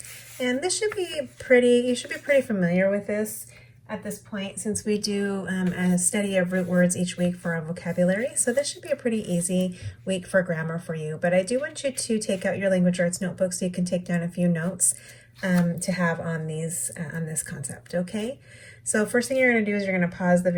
and this should be you should be pretty familiar with this at this point, since we do a study of root words each week for our vocabulary. So this should be a pretty easy week for grammar for you. But I do want you to take out your language arts notebook so you can take down a few notes to have on this concept. Okay. So first thing you're going to do is you're going to pause the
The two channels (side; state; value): both; identical; correlation 1.00